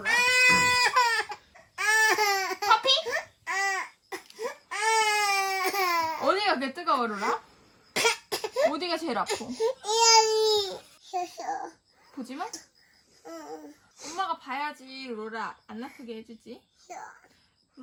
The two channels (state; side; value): identical; both; correlation 1.00